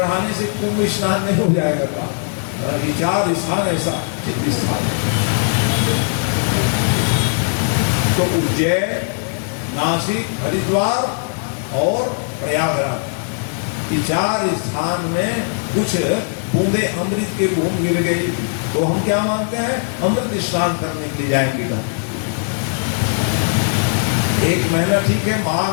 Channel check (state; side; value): silent; right; 67 dB below the other